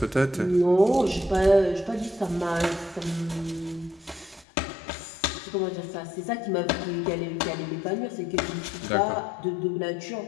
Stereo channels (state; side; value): drops out; right; at 4.5 s